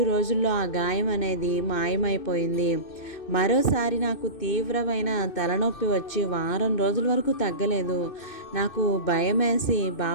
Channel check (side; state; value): right; late; 2.6 ms